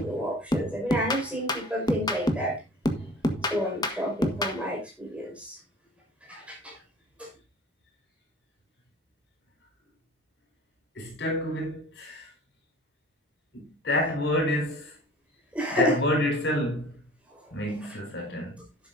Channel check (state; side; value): normal; both; correlation 0.45